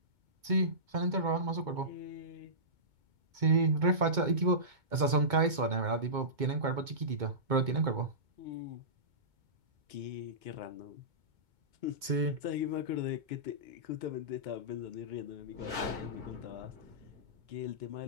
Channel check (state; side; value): late; left; 2.2 ms